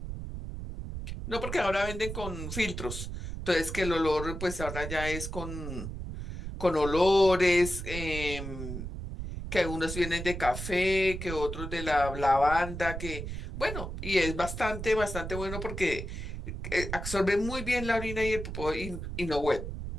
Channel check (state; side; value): noise; right; rumble, 7 dB below the sound